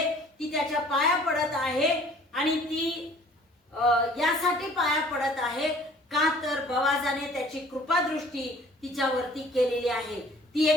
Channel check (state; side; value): normal; both; correlation 0.53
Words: ती त्याच्या पाया पडत आहे. आणि ती यासाठी पाया पडत आहे का तर बोआजाने त्याची कृपादृष्टी तिच्यावरती केलेली आहे. ती